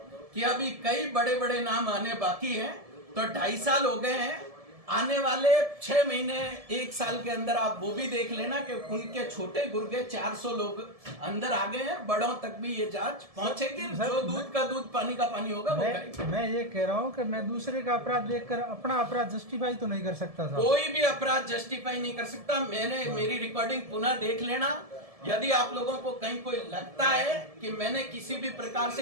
कि अभी कई बड़े बड़े नाम आने बाकी हैं। तो 2.5 साल हो गए हैं, आने वाले 6 महीने 1 साल के अंदर आप वो भी देख लेना कि उनके छोटे गुर्गे 400 लोग अंदर आ गए हैं। बड़ों तक भी ये जांच पहुंचेगी। जो दूध का दूध पानी का पानी होगा वो करेंगे। मैं ये कह रहा हूँ कि मैं दूसरे का अपराध देखकर अपना अपराध जस्टिफाई तो नहीं कर सकता था। कोई भी अपराध जस्टिफाई नहीं कर सकता। मेरी रिकॉर्डिंग पुनः देख लेना। यदि आप लोगों को कहीं कोई लगता है कि मैंने किसी भी प्रकार से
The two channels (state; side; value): late; left; 1.7 ms